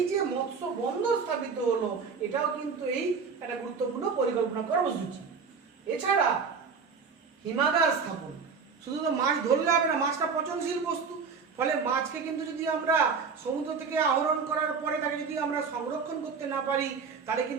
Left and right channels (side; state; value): left; quieter; 5.5 dB